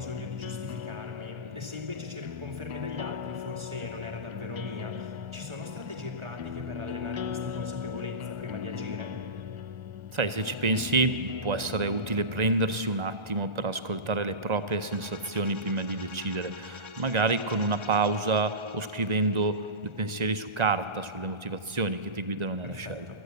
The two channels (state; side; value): late; left; 1.3 ms